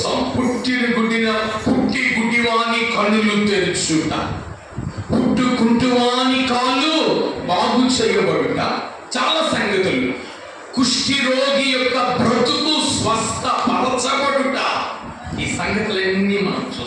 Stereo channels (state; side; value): identical; both; correlation 1.00